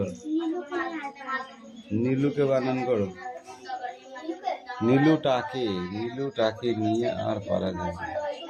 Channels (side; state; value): both; identical; correlation 1.00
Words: নীলুকে বানান করো। নীলুটাকে নিয়ে আর পারা যায় না।